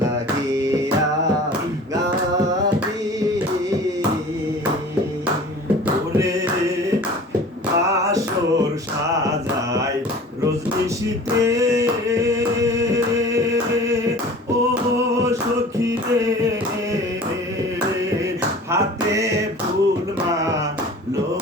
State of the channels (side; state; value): both; normal; correlation 0.43